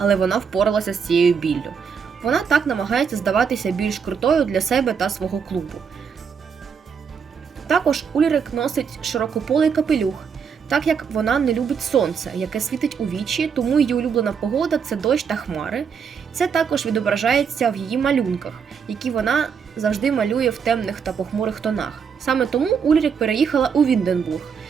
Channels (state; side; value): quieter; left; 6.5 dB